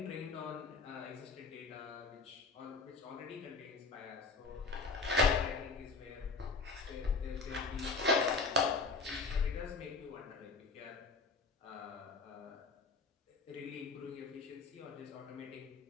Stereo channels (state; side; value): quieter; right; 4.1 dB